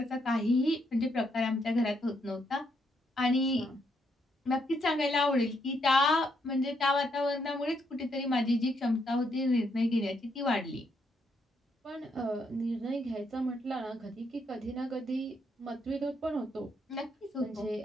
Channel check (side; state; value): both; normal; correlation 0.76